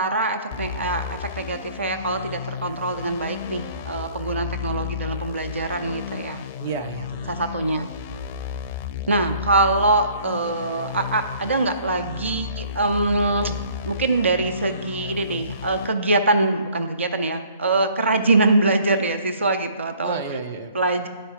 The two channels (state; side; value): inverted; both; correlation -0.56